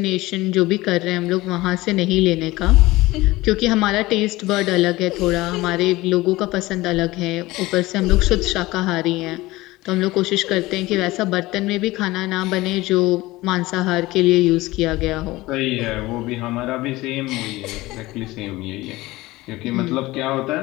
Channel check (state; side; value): quieter; right; 19.3 dB